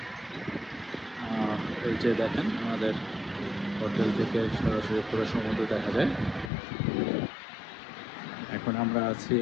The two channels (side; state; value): right; drops out; at 6.5 s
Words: এই যে দেখেন আমাদের হোটেল থেকে সরাসরি পুরো সমুদ্র দেখা যায়। এখন আমরা আছি